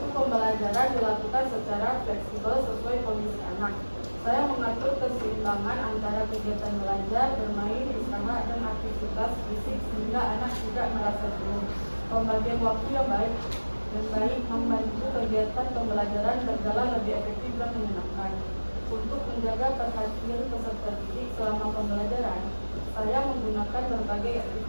pembelajaran dilakukan secara fleksibel sesuai kondisi anak. Saya mengatur keseimbangan antara kegiatan belajar, bermain, usaha, dan aktivitas fisik sehingga anak tidak merasa jenuh. Pembagian waktu yang baik membantu kegiatan pembelajaran berjalan lebih efektif dan menyenangkan. Untuk menjaga perhatian peserta didik selama pembelajaran, saya menggunakan berbagai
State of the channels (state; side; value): inverted; both; correlation -1.00